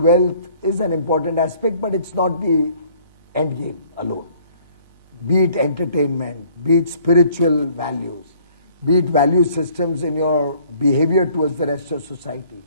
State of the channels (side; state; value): both; inverted; correlation -0.58